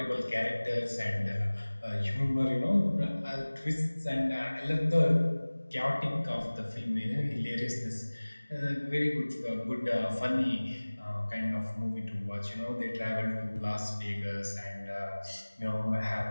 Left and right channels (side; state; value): both; inverted; correlation -1.00